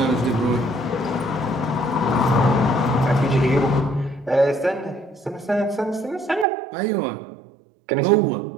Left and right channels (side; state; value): left; drops out; at 6.5 s